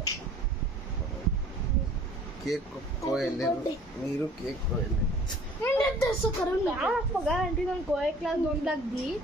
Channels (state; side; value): normal; both; correlation 0.50